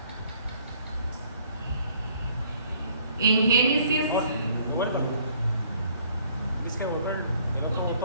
En Génesis... Es que volver el otro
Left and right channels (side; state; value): both; inverted; correlation -0.61